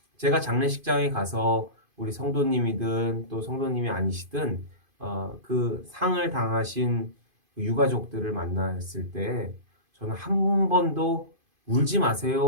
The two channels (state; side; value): late; left; 2.5 ms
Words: 제가 장례식장에 가서 우리 성도님이든 또 성도님이 아니시든 그 상을 당하신 유가족들을 만났을 때 저는 한 번도 울지